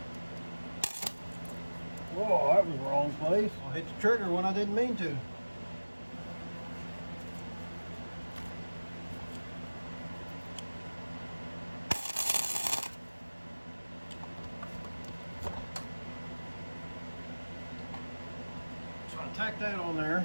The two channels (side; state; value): both; inverted; correlation -1.00